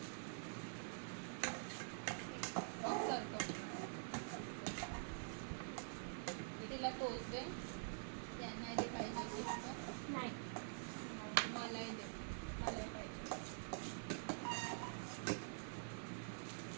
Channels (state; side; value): silent; left; digital silence